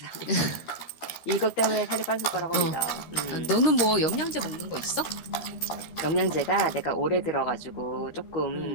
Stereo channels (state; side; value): late; right; 13 ms